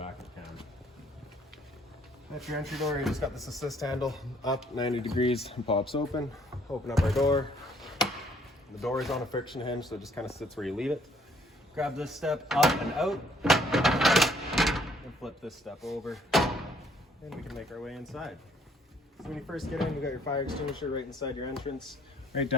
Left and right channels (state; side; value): normal; both; correlation 0.64